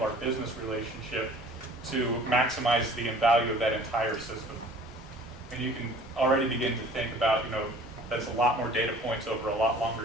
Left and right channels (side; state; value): both; normal; correlation 0.49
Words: our business relationship to maximize the value of that entire system. And you can already begin to think about, that's a lot more data points over a lot